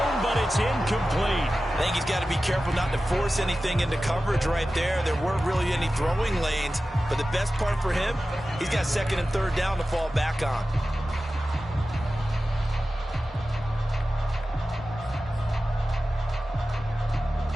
but it's incomplete. I think he's got to be careful not to force anything into coverage right there. There weren't really any throwing lanes, but the best part for him, he's got 2nd and 3rd down to fall back on.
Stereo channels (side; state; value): both; normal; correlation 0.94